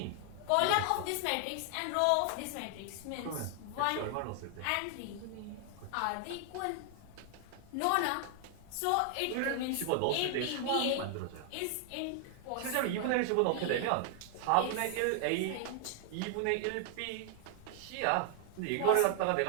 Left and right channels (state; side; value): different; both; correlation 0.00